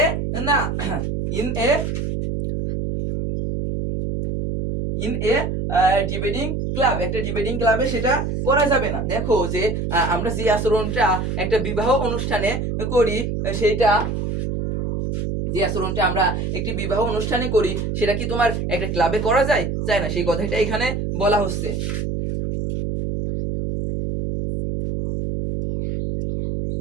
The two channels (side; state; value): right; noise; hum, 2 dB below the sound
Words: না, ইন এ ডিবেটিং ক্লাব একটা ডিবেটিং ক্লাবে সেটা করা যাবে না। দেখো যে আমরা যে আচরণটা একটা বিবাহ অনুষ্ঠানে করি, সেইটা যে আচরণটা আমরা একটি বিবাহ অনুষ্ঠানে করি সেটা কি তোমার একটা ক্লাবে করা যায়, যায় না, সেই কথাটা এখানে বলা হচ্ছে।